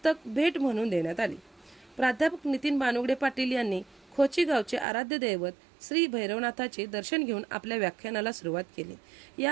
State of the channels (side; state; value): left; drops out; at 4.9 s